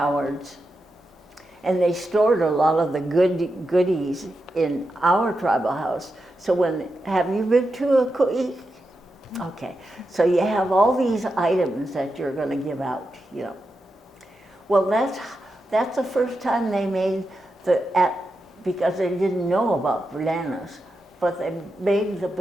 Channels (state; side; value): normal; both; correlation 0.88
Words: and they stored a lot of the goodies in our tribal house. So have you been to a ku'i? Okay, so you have all these items that you're going to give out, Well, that's the first time they made because they didn't know about bananas, but they made the